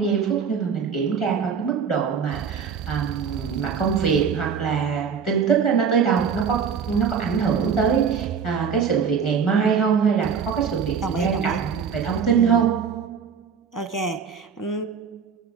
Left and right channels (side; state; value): left; quieter; 6.5 dB